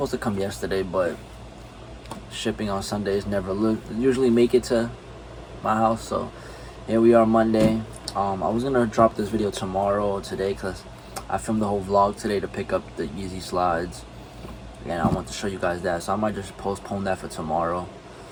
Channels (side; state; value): both; identical; correlation 1.00